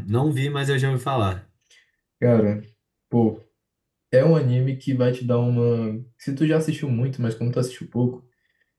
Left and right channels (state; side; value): identical; both; correlation 1.00